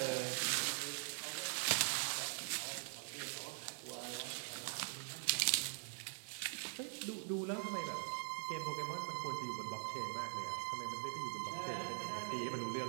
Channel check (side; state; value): left; silent; digital silence